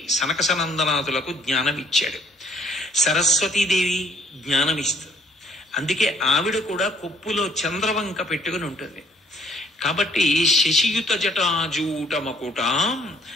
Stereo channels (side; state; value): both; normal; correlation 0.63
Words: సనకసనందనాథులకు జ్ఞానం ఇచ్చాడు. సరస్వతీదేవి జ్ఞానం ఇస్తుంది. అందుకే ఆవిడ కూడా కొప్పులో చంద్రవంక పెట్టుకుని ఉంటుంది. కాబట్టి శశియుత జటాజూట మకుటాం